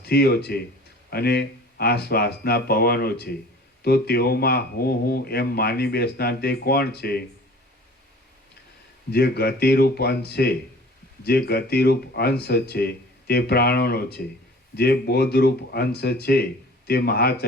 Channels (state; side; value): normal; both; correlation 0.46